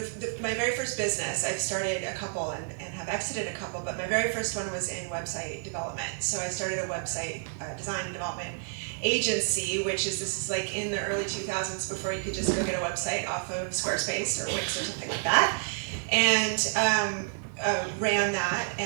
my very first business, I've started a couple and have exited a couple, but my very first one was in website development. So I started a website design and development agency, this is like in the early 2000s before you could just go get a website off of Squarespace or Wix or something like that. And ran that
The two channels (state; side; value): silent; left; 58 dB below the other